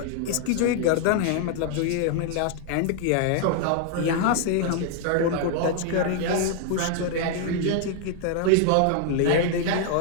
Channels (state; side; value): different; both; correlation 0.00